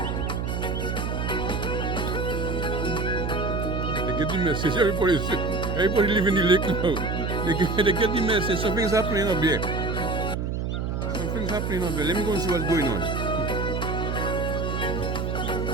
They get the message. Everybody live in the lake now. They get the message. Something's happening up there. Something's happening up there. Let me go and see what's going on.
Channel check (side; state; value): right; noise; hum, 1 dB below the sound